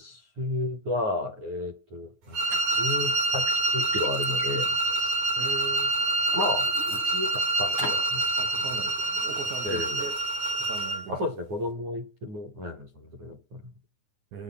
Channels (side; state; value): left; late; 9.6 ms